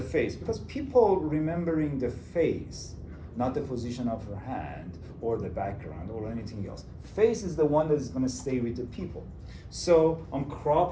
because people remembering the face, not the position of her hand or the background or anything else. Face is the one that is going to stay with the people. So I'm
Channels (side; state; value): both; identical; correlation 1.00